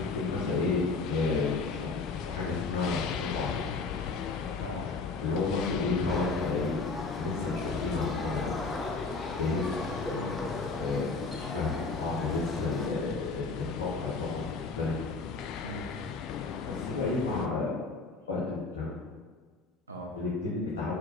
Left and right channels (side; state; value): right; quieter; 3.9 dB